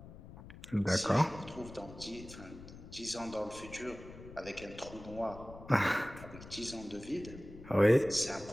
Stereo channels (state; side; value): noise; left; rumble, 16 dB below the sound